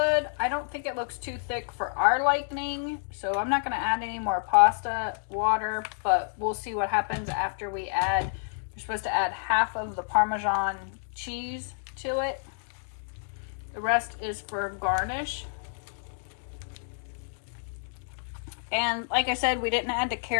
I don't think it looks too thick for our liking, so I'm not going to add any more pasta water, but we'll see what happens after we add. You're supposed to add half of the Parmesan cheese to it. The rest is for garnish. And like I said, we didn't add the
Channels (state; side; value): silent; right; digital silence